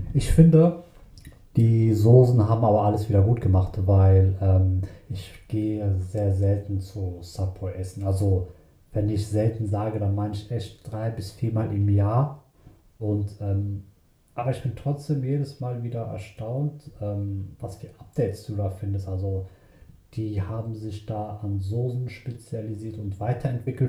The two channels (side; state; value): both; identical; correlation 1.00